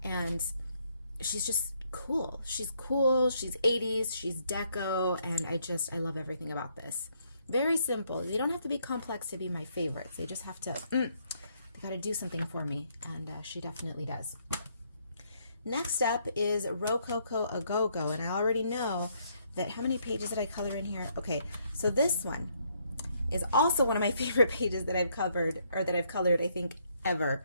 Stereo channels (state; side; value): inverted; both; correlation -0.71